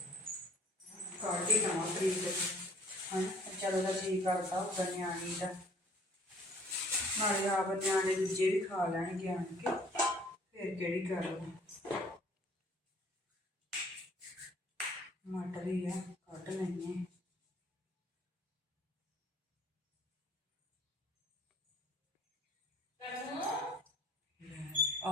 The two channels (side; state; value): both; normal; correlation 0.56